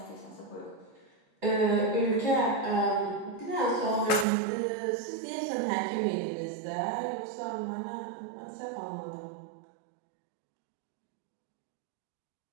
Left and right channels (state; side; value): drops out; left; at 4.2 s